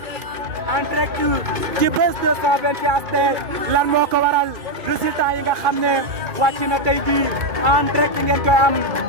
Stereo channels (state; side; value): late; left; 2.2 ms